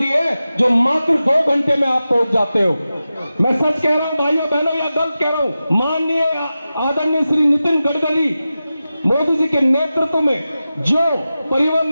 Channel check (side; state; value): both; inverted; correlation -0.93